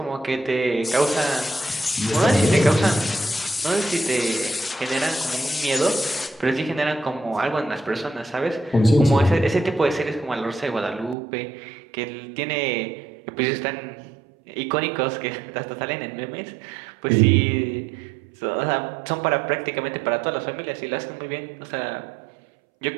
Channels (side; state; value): left; drops out; at 11.2 s